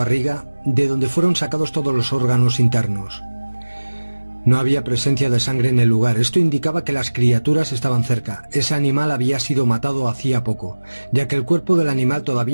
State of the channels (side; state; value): both; inverted; correlation -1.00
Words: de donde fueron sacados todos los órganos internos. No había presencia de sangre en el lugar. Esto indicaba que las criaturas estaban cerca. Ese animal había sido matado hacía poco, ya que el cuerpo del animal